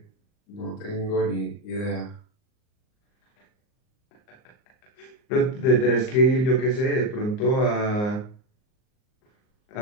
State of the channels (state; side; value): late; right; 38 ms